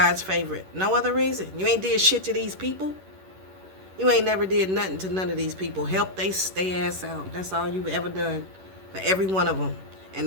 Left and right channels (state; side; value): late; left; 11 ms